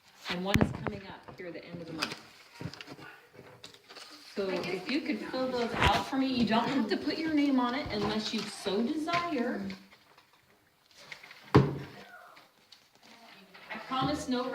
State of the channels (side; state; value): both; identical; correlation 1.00